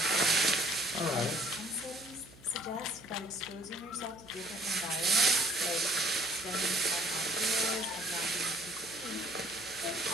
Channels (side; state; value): right; noise; hum, 23 dB below the sound